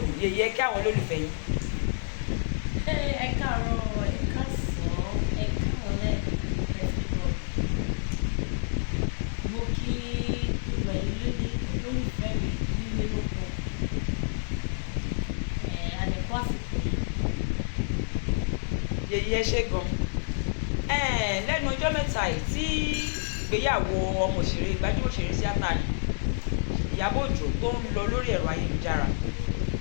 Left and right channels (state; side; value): silent; right; digital silence